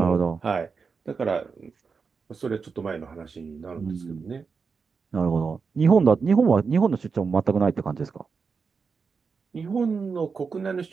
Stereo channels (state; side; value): quieter; left; 5.2 dB